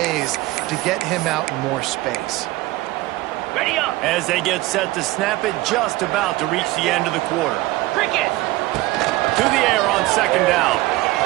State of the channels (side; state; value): left; quieter; 18.9 dB